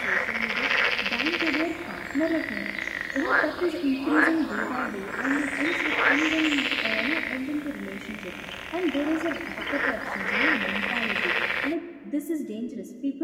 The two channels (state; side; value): identical; both; correlation 1.00